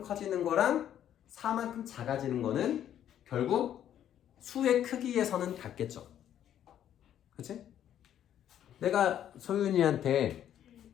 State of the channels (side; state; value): right; quieter; 10.5 dB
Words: 커지는 거랑 4만큼 작아지는 거는 결국 수의 크기에서는 같겠죠. 그치? 내가 소윤이한테